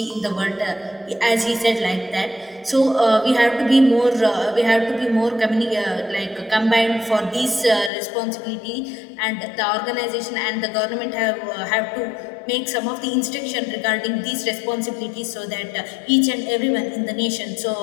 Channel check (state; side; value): drops out; right; at 7.9 s